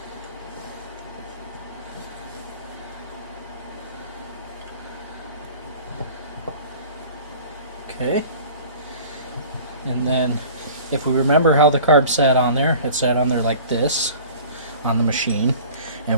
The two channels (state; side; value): inverted; both; correlation -0.44